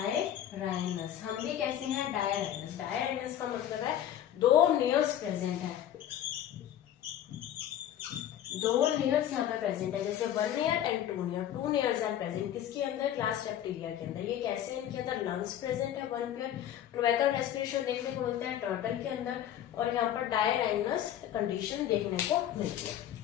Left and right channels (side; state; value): right; quieter; 11.0 dB